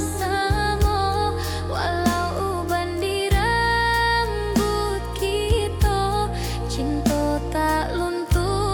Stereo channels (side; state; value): both; identical; correlation 1.00